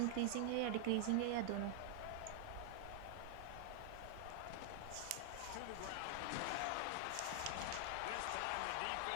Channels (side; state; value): both; different; correlation 0.00